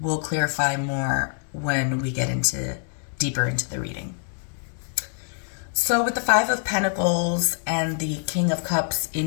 clarify more when we get deeper into the reading. So with the Five of Pentacles and the King of Cups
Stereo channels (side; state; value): right; silent; 57 dB below the other